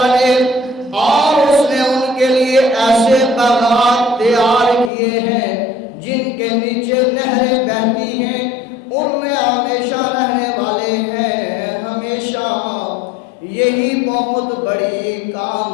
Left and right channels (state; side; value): drops out; right; at 4.9 s